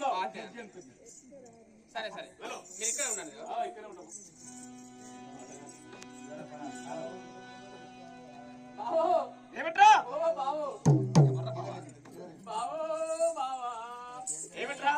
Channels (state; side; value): identical; both; correlation 1.00